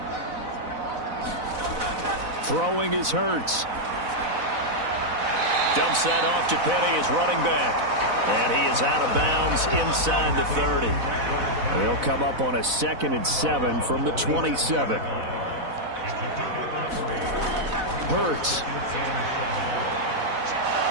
Throwing is Hurts. Dumps that off to Penny, his running back. And he is out of bounds inside the 30. They'll come up on a 2nd and 7 from the 27. Hurts.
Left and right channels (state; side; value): late; left; 4.0 ms